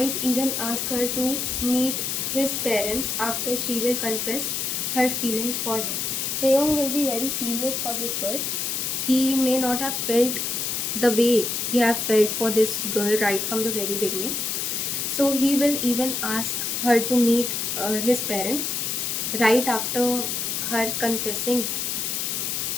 even ask her to meet his parents after she will confess her feelings for him. Taeyong will be very serious for this girl. He may not have felt the way he have felt for this girl right from the very beginning. So he will even ask her to meet his parents right after her confessing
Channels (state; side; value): noise; left; hiss, 1 dB below the sound